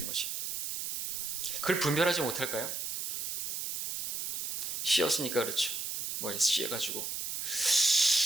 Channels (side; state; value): right; noise; hiss, 2 dB below the sound